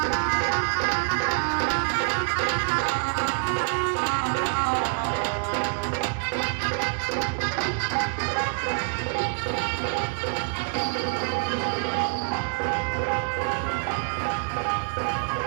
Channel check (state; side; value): silent; left; 61 dB below the other